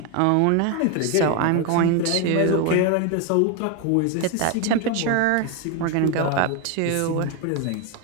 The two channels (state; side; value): different; both; correlation 0.01